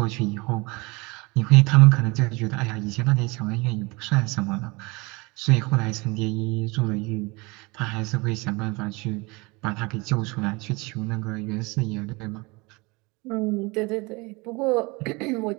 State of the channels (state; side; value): quieter; left; 26.0 dB